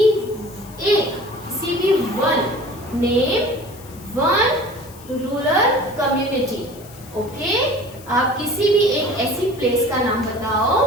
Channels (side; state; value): left; noise; hiss, 21 dB below the sound